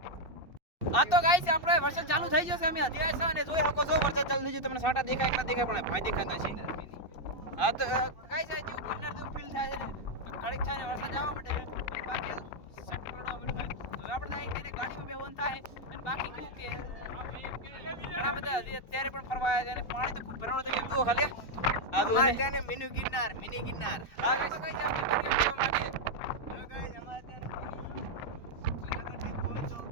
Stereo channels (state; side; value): late; right; 2.6 ms